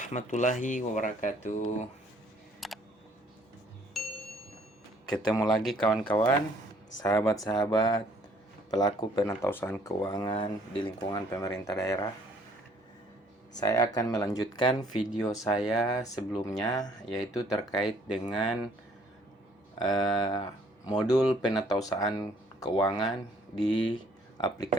wabarakatuh. Ketemu lagi kawan-kawan, sahabat-sahabat, pelaku penatausahaan keuangan di lingkungan pemerintah daerah. Saya akan melanjutkan video saya sebelumnya, yaitu terkait dengan modul penatausahaan keuangan di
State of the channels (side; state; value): both; normal; correlation 0.61